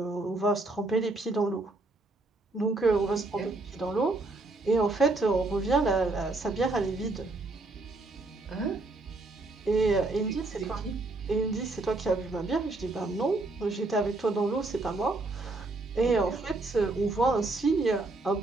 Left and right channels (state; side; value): quieter; left; 3.1 dB